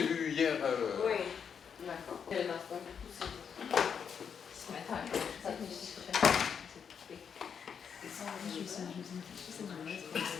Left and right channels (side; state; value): right; quieter; 7.1 dB